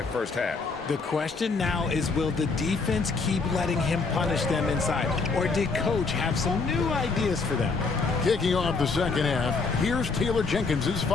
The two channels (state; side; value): quieter; right; 4.3 dB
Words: first half. The question now is, will the defense keep letting him punish them inside? Or did Coach have some new ideas for them? Kicking off the second half, here's Taylor Jenkins'